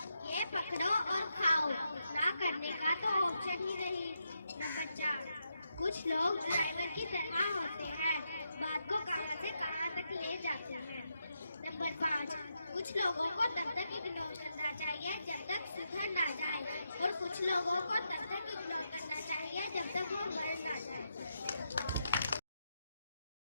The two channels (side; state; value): both; inverted; correlation -0.83